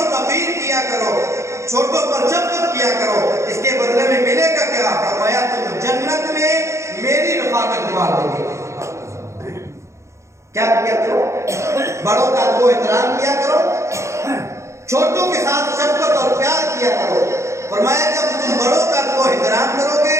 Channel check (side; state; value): left; late; 0.14 ms